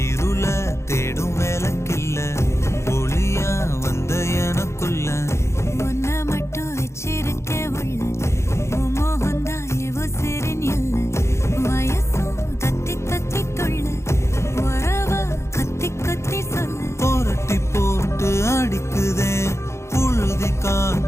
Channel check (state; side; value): late; right; 0.13 ms